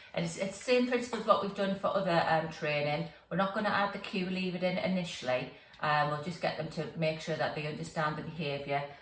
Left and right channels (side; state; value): both; identical; correlation 1.00